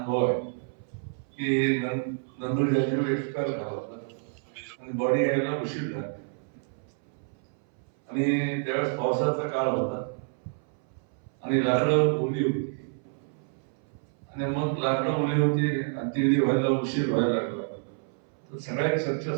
आहे की नंदूर जाजीव एक्सपायर झाला होता आणि बॉडी यायला उशीर झाला आणि त्यावेळेस पावसाचा काळ होता आणि लाकडं ओली होती आणि मग लाकडं ओली होती आणि ती व्हायला उशीर व्हायला लागला. तर सगळ्यात चर्चा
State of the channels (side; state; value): left; silent; 58 dB below the other